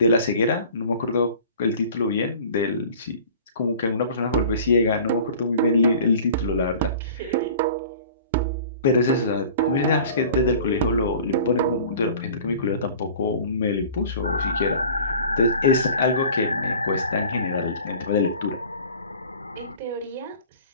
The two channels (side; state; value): both; inverted; correlation -0.44